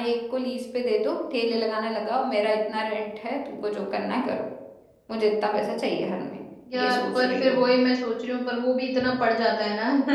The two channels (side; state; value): both; identical; correlation 1.00